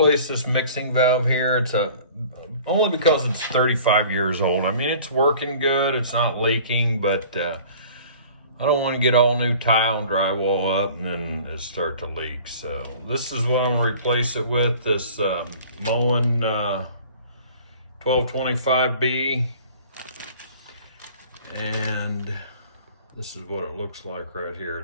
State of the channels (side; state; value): both; inverted; correlation -0.47